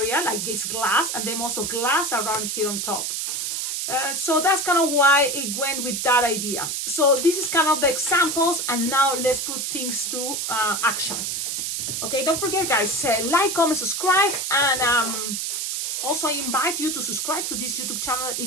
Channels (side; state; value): right; noise; hiss, 2 dB below the sound